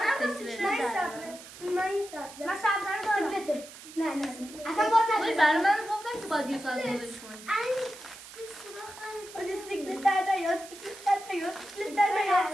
من این سبزه من سبزه رو دارم سیکلته نه اصلا باز ولی برای من گفتم که باید یه ساعت بودش کنی باید سیکلت در نیاد سیکلت در نیاد سیکلت در نیاد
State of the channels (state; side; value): noise; right; hiss, 16 dB below the sound